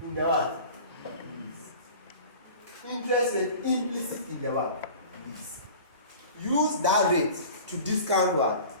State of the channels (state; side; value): inverted; both; correlation -0.41